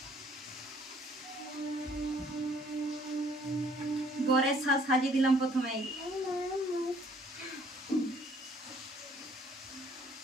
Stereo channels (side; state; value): both; normal; correlation 0.60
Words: বরের সাজিয়ে দিলাম প্রথমেই।